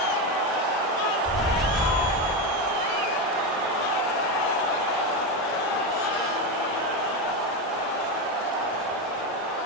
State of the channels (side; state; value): both; normal; correlation 0.13